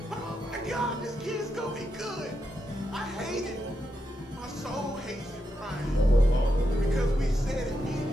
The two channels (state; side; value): normal; both; correlation 0.84